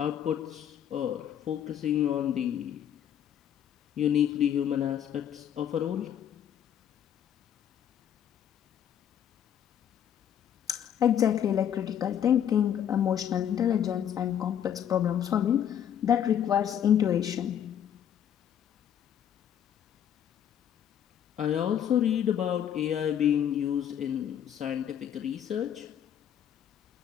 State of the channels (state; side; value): quieter; right; 9.5 dB